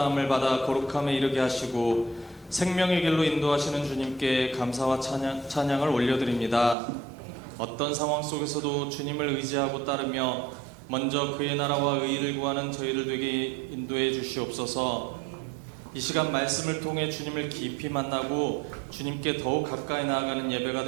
받아 거룩함에 이르게 하시고 생명의 길로 인도하시는 주님께 감사와 찬양을 올려드립니다. 어떤 상황 속에서도 주님을 의지하고 따르며 먼저 그의 나라와 의의를 구하는 저희들 되게 인도해 주시옵소서. 이 시간 말씀을 통해 주님을 깊이 만나고 주님께 더욱 가까이 나아가는 예배가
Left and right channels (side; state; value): left; drops out; at 6.8 s